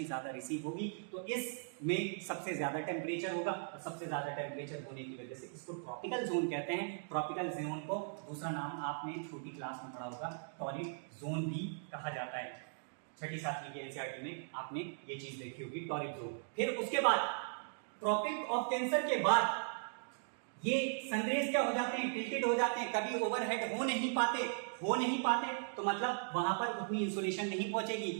ज्यादा रिसीव होगी तो इसमें सबसे ज्यादा टेम्परेचर होगा, और सबसे ज्यादा टेम्परेचर होने की वजह से इसको ट्रॉपिकल जोन कहते हैं। ट्रॉपिकल जोन को दूसरा नाम आपने छोटी क्लास में पढ़ा होगा, टॉरिड जोन भी कहा जाता है, छठी सातवीं के एनसीईआरटी में आपने ये चीज देखी होगी, टॉरिड जोन। फिर उसके बाद ट्रॉपिक ऑफ कैंसर के बाद ये सनरेज क्या हो जाते हैं, टिल्टेड हो जाते हैं, कभी ओवरहेड हो नहीं पाते, तो मतलब वहां पर उतनी इंसोलेशन नहीं पहुंचेगी,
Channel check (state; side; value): silent; left; digital silence